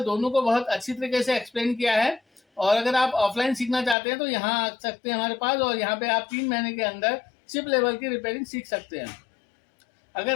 दोनों को बहुत अच्छी तरीके से एक्सप्लेन किया है। और अगर आप ऑफलाइन सीखना चाहते हैं तो यहाँ आ सकते हैं हमारे पास, और यहाँ पे आप 3 महीने के अंदर चिप लेवल की रिपेयरिंग सीख सकते हैं।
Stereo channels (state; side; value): drops out; right; at 4.0 s